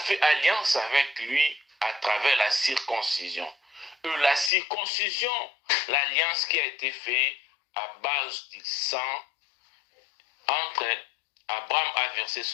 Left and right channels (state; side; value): drops out; right; at 4.5 s